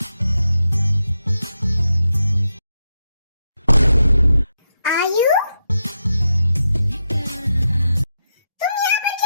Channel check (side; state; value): both; inverted; correlation -0.85